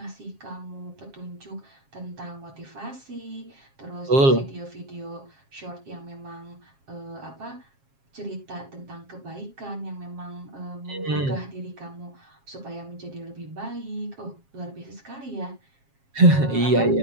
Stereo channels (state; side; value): late; left; 7.4 ms